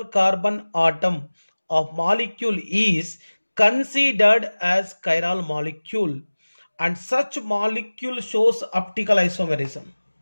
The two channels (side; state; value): both; inverted; correlation -1.00